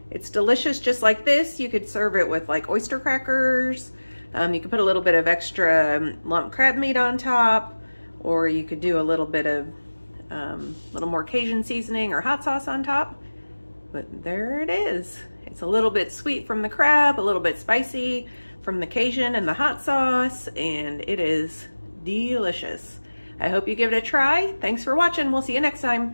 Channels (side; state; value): both; inverted; correlation -1.00